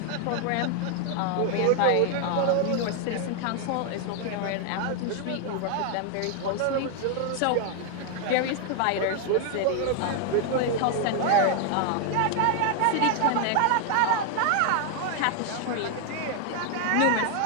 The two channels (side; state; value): both; different; correlation 0.00